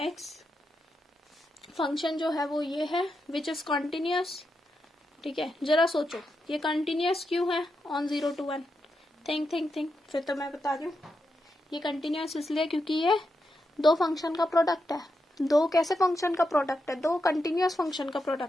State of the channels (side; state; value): both; normal; correlation 0.86